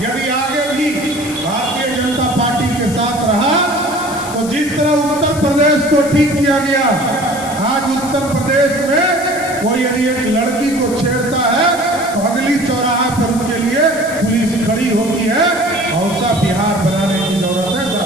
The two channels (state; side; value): noise; left; hiss, 13 dB below the sound